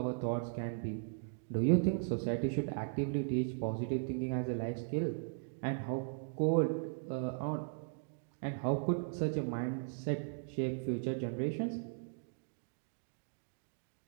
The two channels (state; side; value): silent; left; digital silence